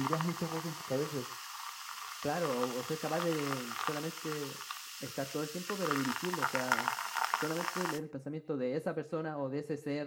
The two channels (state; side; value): identical; both; correlation 1.00